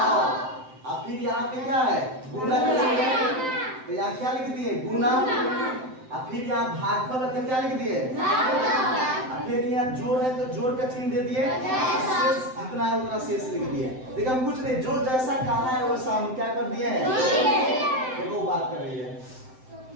अब फिर यहाँ पे क्या है? गुना का चिन्ह है, तो यहाँ क्या लिख दिए? गुना। अब फिर यहाँ भागफल है तो क्या लिख दिए? अब फिर यहाँ जोड़ है तो जोड़ का चिन्ह दे दिए। शेष जितना है उतना शेष लिख दिए। देखिए हम कुछ नहीं, जो जैसा कहा है वैसा हम क्या कर दिए हैं? देखो बात कर रही है,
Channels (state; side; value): late; left; 7.8 ms